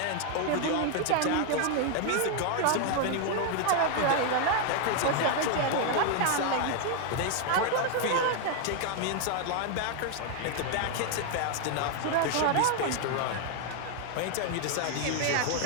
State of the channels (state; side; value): different; both; correlation 0.00